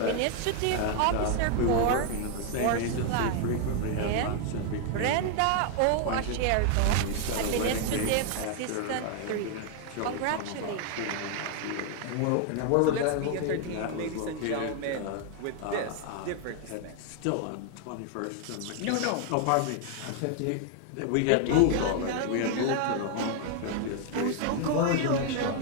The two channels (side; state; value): both; different; correlation 0.00